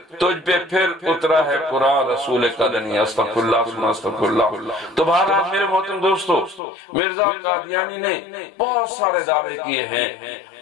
پہ پھر اترا ہے قرآن رسول قدنی۔ استغفر اللہ استغفر اللہ۔ تو بہرحال میرے محترم دوستو، مرزا قادیانی نے بہت سارے دعوے کیے ہیں،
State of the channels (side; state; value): right; drops out; at 6.6 s